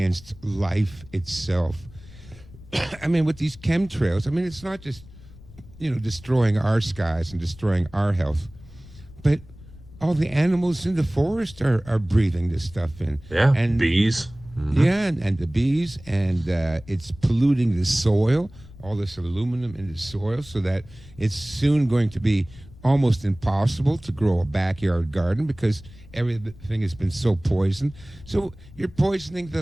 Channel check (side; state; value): left; noise; rumble, 20 dB below the sound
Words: life itself. I mean, with these chemtrails, I mean, it's not just, destroying our skies and destroying our health, but all the animals in the forest are breathing this stuff in. yeah, And bees. yeah, and the bees, and it's polluting the soil, all this aluminum in the soil, so that it's soon going to be almost impossible to grow a backyard garden because everything has been so poisoned. So you're poisoning the